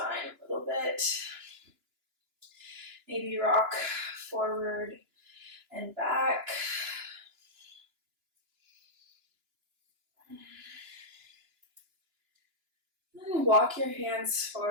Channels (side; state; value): left; late; 2.9 ms